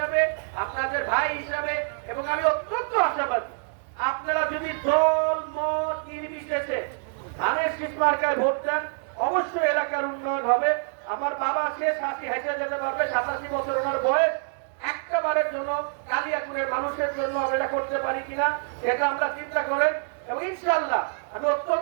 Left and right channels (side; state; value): left; silent; digital silence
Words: আপনাদের ভাই হিসাবে। এবং আমি অত্যন্ত আশাবাদী আপনারা যদি দল মত নির্বিশেষে ধানের শীষ মার্কায় ভোট দেন, অবশ্যই এলাকার উন্নয়ন হবে। আমার বাবা শেষ হাসি হেঁটে যেতে পারবে, 87 বছর ওনার বয়স। একটাবারের জন্য কালিয়াকৈরের মানুষের জন্য আমরা এটা করতে পারি কিনা সেটা আমরা চিন্তা করেন। এবং ইনশাআল্লাহ আমি